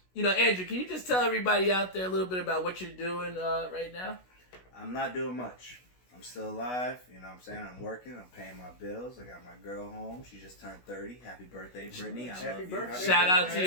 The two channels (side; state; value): right; late; 16 ms